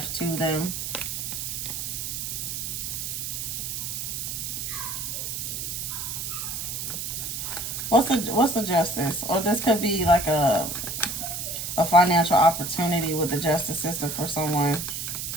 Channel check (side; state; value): right; noise; hiss, 4 dB below the sound